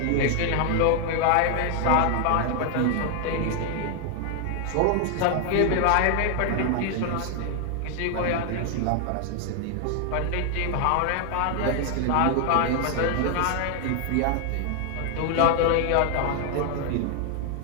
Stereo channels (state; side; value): different; both; correlation 0.00